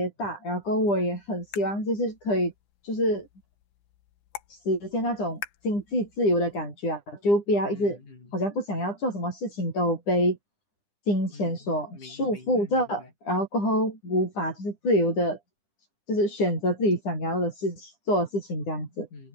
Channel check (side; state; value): right; late; 9.9 ms